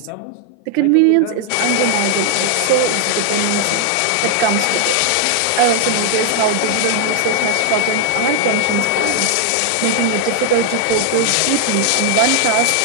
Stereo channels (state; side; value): different; both; correlation 0.00